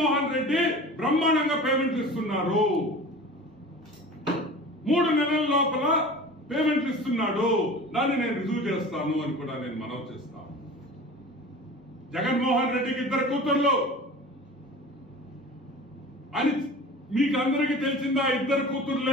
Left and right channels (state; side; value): normal; both; correlation 0.38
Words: రెడ్డి బ్రహ్మాండంగా పేమెంట్లు ఇస్తున్నారు. 3 నెలల లోపల పేమెంట్లు ఇస్తున్నాడు. దాన్ని నేను రుజువు చేస్తాను అని కూడా నేను మనవి చేస్తాను. జగన్మోహన్ రెడ్డికి 2 కూతుర్లు అని మీకు అందరికీ తెలిసిందా? 2